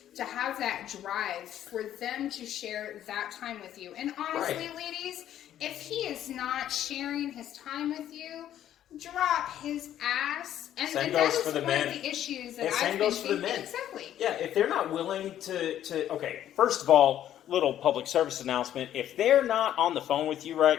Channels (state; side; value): quieter; right; 11.4 dB